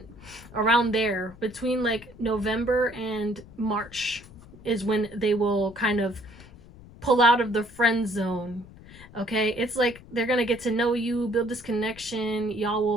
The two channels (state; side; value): noise; left; rumble, 20 dB below the sound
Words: around there, between like November and March is when they will kind of pull out of the friend zone. Okay, it's like they're gonna get to know you, build this connection, y'all